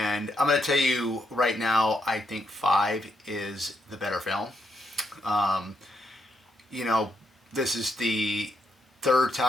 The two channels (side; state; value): both; normal; correlation 0.78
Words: I'm going to tell you right now, I think 5 is the better film. Um, you know, this is the third